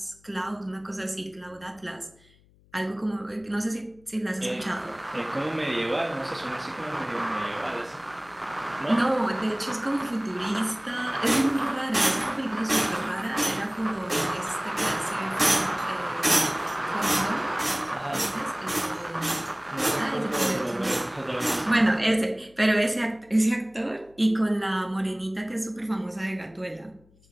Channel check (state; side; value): noise; left; hum, 30 dB below the sound